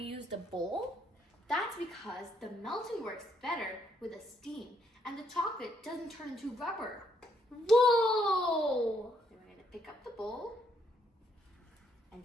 used a bowl? That's because the melting works better with a steam and the chocolate doesn't turn into rubber. Whoa! Then we're going to pick up the bowl and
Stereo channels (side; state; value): both; normal; correlation 0.73